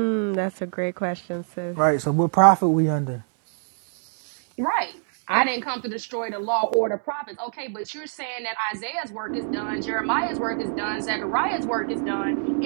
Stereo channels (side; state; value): left; silent; digital silence